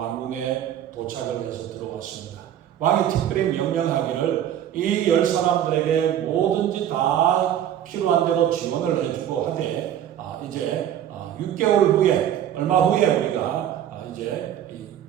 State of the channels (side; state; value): left; quieter; 10.6 dB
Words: 도착을 해서 들어왔습니다. 왕이 특별히 명령하기를 이 10사람들에게 뭐든지 다 필요한 대로 지원을 해주고 하되 이제 6개월 후에 얼마 후에 우리가 이제